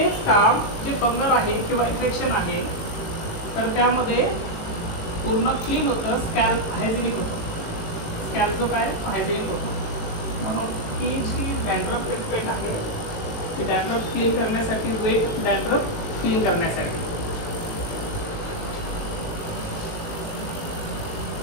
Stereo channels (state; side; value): late; right; 18 ms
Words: काम जे फंगल आहे किंवा इन्फेक्शन आहे तर त्यामध्ये पूर्ण क्लीन होतं, स्कॅल्प हायजेनिक होतं. स्कॅल्प जो काय हायजेनिक होतो. म्हणून ही जी डॅन्ड्रफ ट्रीटमेंट आहे ती डॅन्ड्रफ क्लीन करण्यासाठी, वेट डॅन्ड्रफ क्लीन करण्यासाठी.